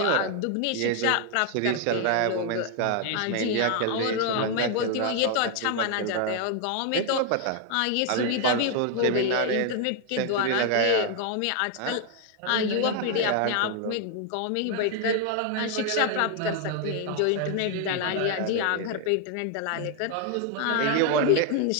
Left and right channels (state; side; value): different; both; correlation 0.00